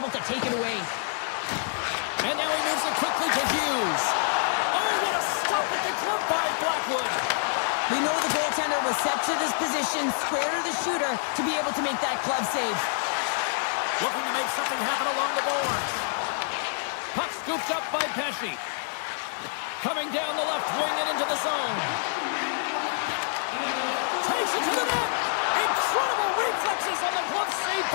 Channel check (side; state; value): right; silent; digital silence